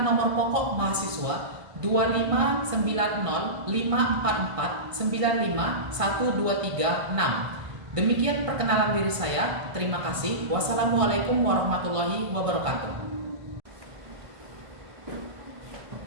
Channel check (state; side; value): late; left; 1.5 ms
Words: nomor pokok mahasiswa 25904495123 Demikian perkenalan diri saya. Terima kasih. Wassalamualaikum warahmatullahi wabarakatuh.